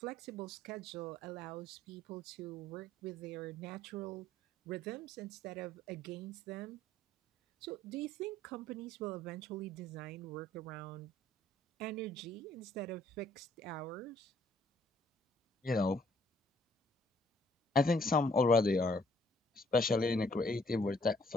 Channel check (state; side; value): normal; both; correlation 0.63